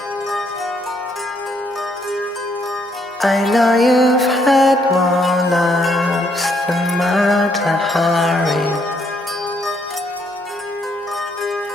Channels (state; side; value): normal; both; correlation 0.71